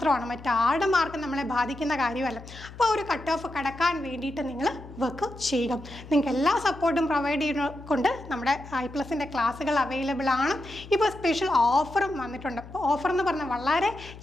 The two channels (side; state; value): left; noise; hum, 16 dB below the sound